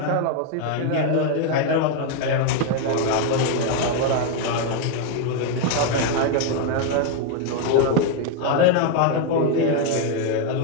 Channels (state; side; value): different; both; correlation 0.01